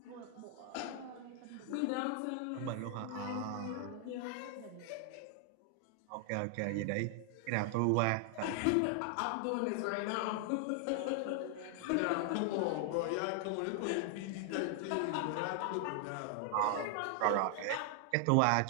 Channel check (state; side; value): different; both; correlation 0.00